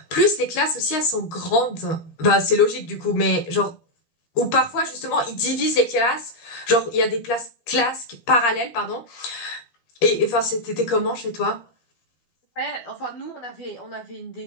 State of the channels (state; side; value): late; right; 12 ms